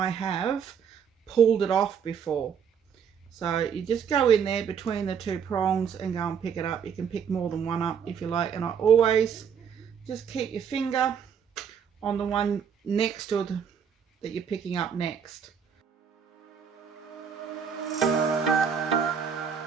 have pulled it off before. So you just go in there between the two prongs and go and pick it up. You can pick more than one up if you like, and I always just keep your finger on the one next to the, that you're picking up next.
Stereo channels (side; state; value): left; quieter; 7.3 dB